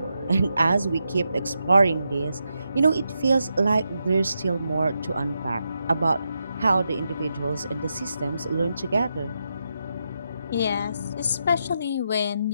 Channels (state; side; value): inverted; both; correlation -0.85